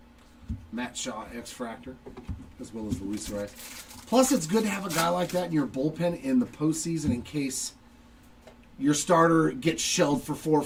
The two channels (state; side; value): identical; both; correlation 1.00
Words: Matt Shaw, X-Fractor, as well as Luis Rice. Plus, it's good to have a guy like that in your bullpen in the postseason in case your starter gets shelled for 4 or